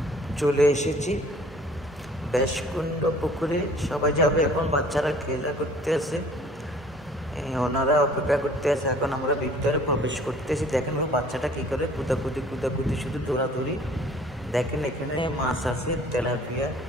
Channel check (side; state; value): both; normal; correlation 0.53